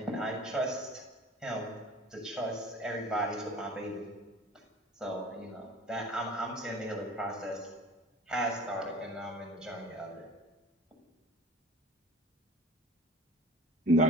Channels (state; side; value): normal; both; correlation 0.43